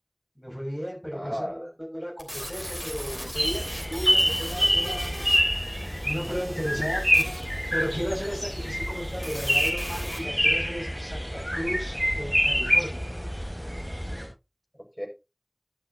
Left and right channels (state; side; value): identical; both; correlation 1.00